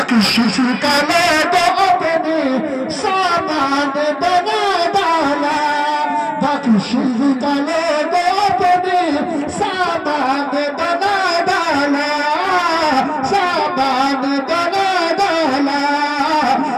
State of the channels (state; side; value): identical; both; correlation 1.00